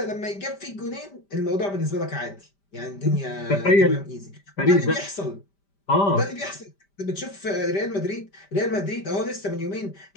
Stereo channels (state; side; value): late; right; 5.1 ms